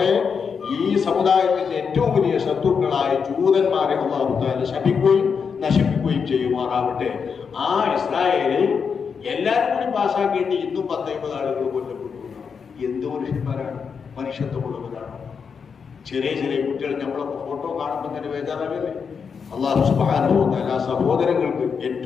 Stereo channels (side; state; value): right; quieter; 6.1 dB